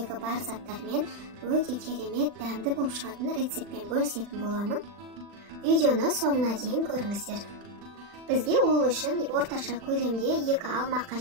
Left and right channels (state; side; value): late; left; 40 ms